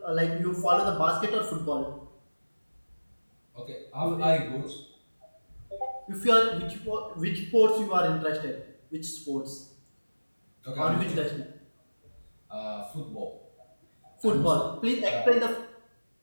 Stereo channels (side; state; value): both; inverted; correlation -1.00